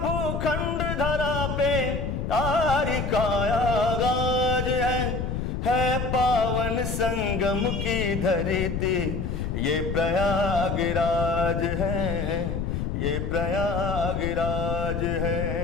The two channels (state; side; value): noise; left; rumble, 2 dB below the sound